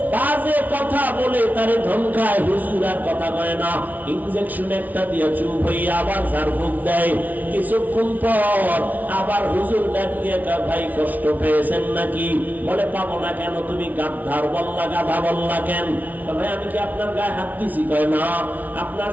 বাজে কথা বলে তারে ধমকায়। হুজুর আর কথা কয় না, ইনজেকশন একটা দিয়ে চুপ হয়ে আবার ঝাড়ফুঁক দেয়। কিছুক্ষণ পর আবার হুজুর ডাক দিয়ে ভাই কষ্ট পেয়েছেন নাকি? বলে পাবো না কেন? তুমি গাধার বললা, গাধা বললা কেন? ভাই আমি কি আপনার গায়ে হাত দিছি? কয় না। আপনার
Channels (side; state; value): left; late; 0.076 ms